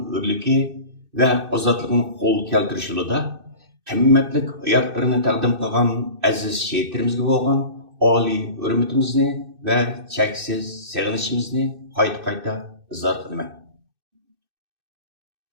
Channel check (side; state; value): left; late; 2.6 ms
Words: o'rligi va ozodligini qo'l keltirish yo'lida qimmatlik hayotlarini taqdim qilgan aziz shehitlarimizga bo'lgan oliy hurmatimizni va cheksiz sig'inishimizni qayta izhor qilaman.